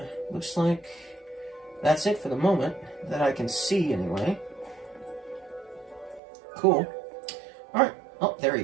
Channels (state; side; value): drops out; left; at 6.2 s